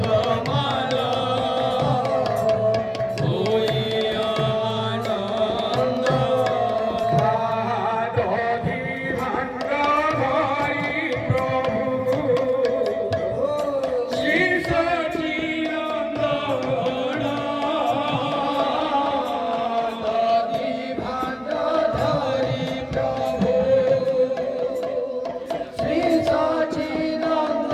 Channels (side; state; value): both; identical; correlation 1.00